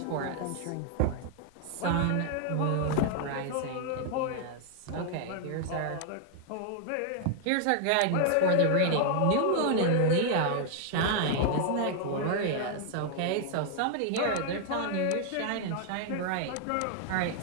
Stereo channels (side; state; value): both; different; correlation 0.00